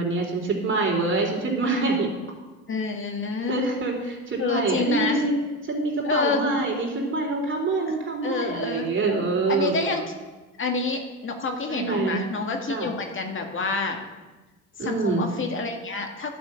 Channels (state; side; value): normal; both; correlation 0.19